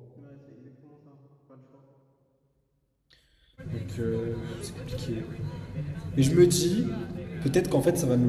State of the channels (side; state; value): both; identical; correlation 1.00